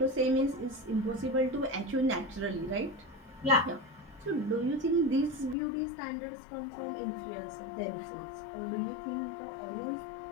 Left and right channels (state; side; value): drops out; right; at 5.6 s